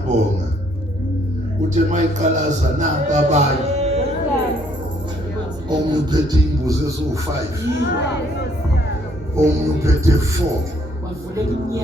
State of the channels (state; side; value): normal; both; correlation 0.66